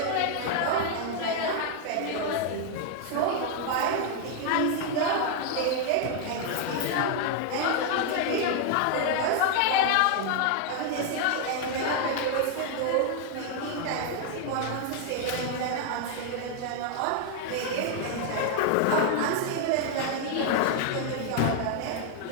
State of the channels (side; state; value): both; different; correlation 0.00